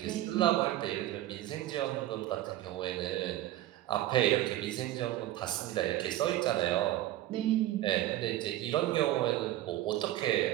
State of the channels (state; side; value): quieter; left; 14.5 dB